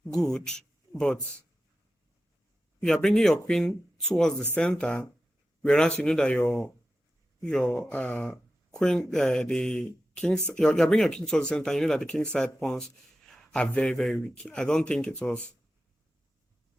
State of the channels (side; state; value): both; normal; correlation 0.92